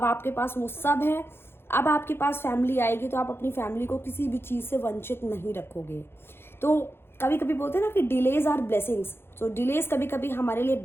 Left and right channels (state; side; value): late; right; 0.11 ms